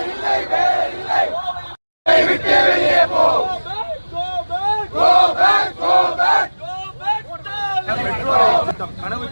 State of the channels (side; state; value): both; inverted; correlation -1.00